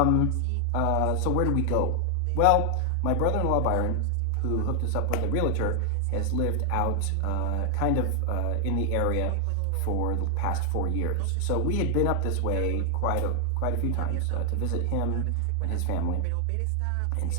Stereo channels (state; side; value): different; both; correlation 0.00